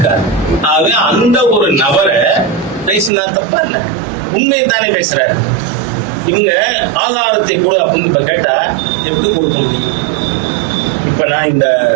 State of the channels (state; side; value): drops out; left; at 3.1 s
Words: ஆக அந்த ஒரு நபரை பேசினா தப்பா இல்ல, உண்மையை தானே பேசுறாரு. இவங்க ஆதாரத்தை கொடு அப்படின்னு இப்ப கேட்டா எப்படி கொடுக்க முடியும்? இப்ப நான் இந்த